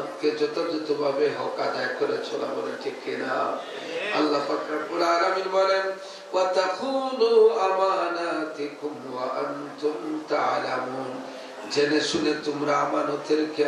যথাযথভাবে হক আদায় করে চলা, বলে ঠিক কিনা? আল্লাহ পাক রব্বুল আলামিন বলেন, ওয়া তাখুনু আমানাতিকুম ওয়া আনতুম তা'লামুন। জেনে শুনে তোমরা আমানতের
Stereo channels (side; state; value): both; identical; correlation 1.00